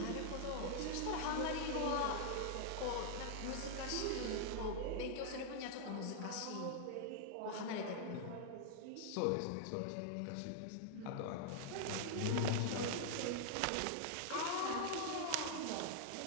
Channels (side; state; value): both; different; correlation -0.01